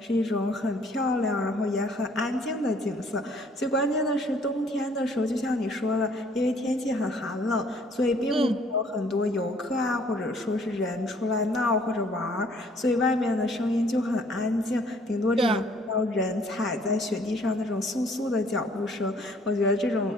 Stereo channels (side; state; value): both; normal; correlation 0.60